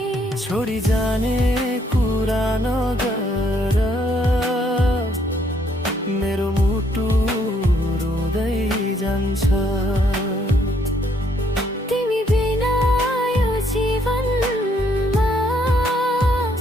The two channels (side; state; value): both; normal; correlation 0.69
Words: छोडी जाने कुरा नगर, मेरो मुटु रुँदै जान्छ। तिमी बिना यो जीवनमा